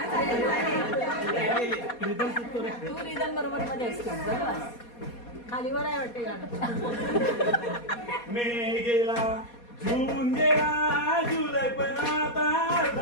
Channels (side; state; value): right; late; 4.2 ms